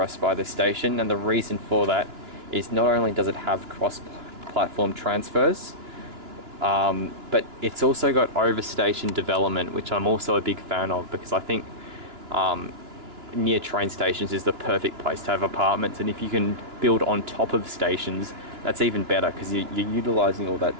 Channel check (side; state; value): left; late; 2.9 ms